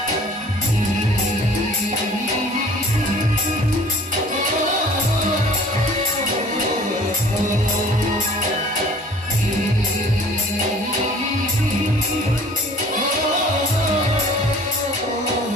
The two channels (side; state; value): both; normal; correlation 0.50